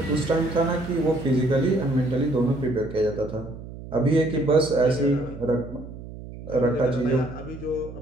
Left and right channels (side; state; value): right; noise; hum, 13 dB below the sound